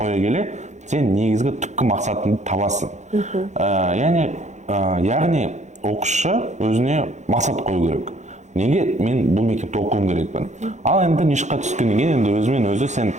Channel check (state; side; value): late; left; 0.34 ms